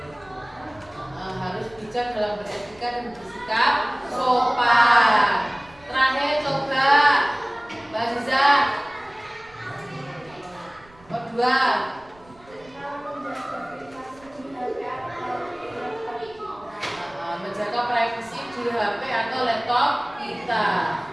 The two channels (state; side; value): noise; right; rumble, 26 dB below the sound